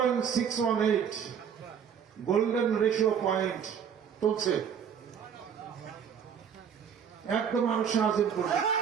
গোল্ডেন রেশিও পয়েন্ট চলছে, একদম মানুষের আজিম করছে।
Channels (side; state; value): left; quieter; 7.7 dB